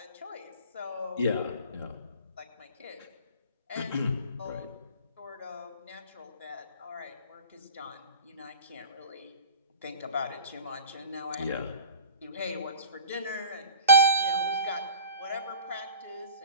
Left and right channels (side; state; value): both; inverted; correlation -0.41